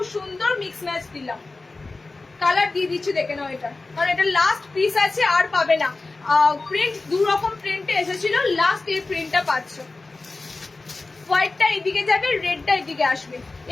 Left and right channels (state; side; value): quieter; right; 3.5 dB